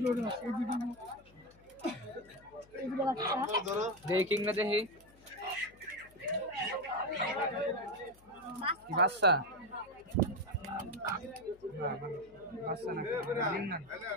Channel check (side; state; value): left; noise; hum, 26 dB below the sound